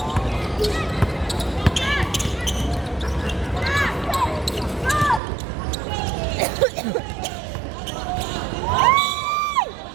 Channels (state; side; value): drops out; left; at 5.2 s